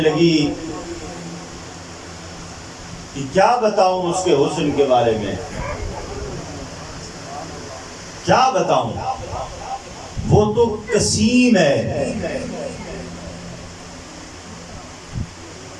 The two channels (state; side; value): identical; both; correlation 1.00